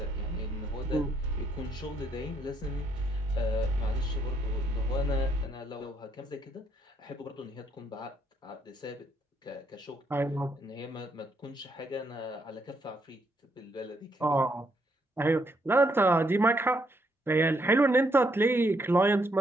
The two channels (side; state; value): both; normal; correlation 0.74